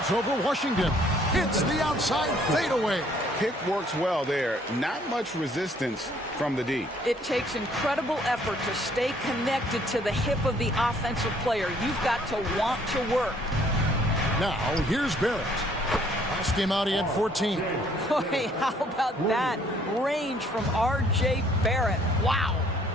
over Washington. Hits the outside fadeaway. Pick works well there. Not much resistance from the D. It takes incredible effort to stay connected to the hip of the offensive player. You've got to want to work. Now, here's Barrett. Last game out, he had 14. Boy, how about that range from R.J. Barrett? Wow.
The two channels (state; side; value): normal; both; correlation 0.62